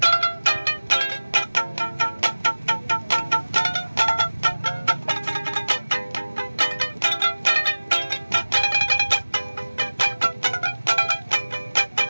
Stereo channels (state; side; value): inverted; both; correlation -1.00